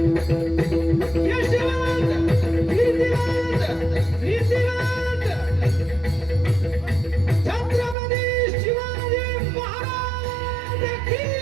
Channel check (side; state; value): left; drops out; at 8.0 s